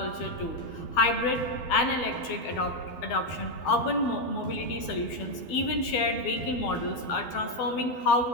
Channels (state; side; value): late; right; 12 ms